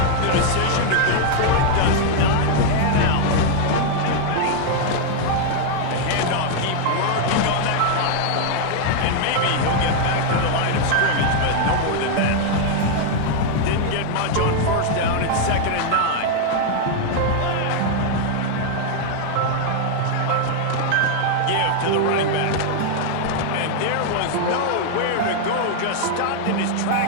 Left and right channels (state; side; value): different; both; correlation 0.00